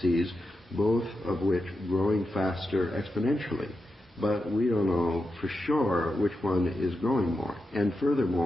both of which growing faster exponentially. But we don't know for sure which one is growing more. And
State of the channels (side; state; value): both; normal; correlation 0.88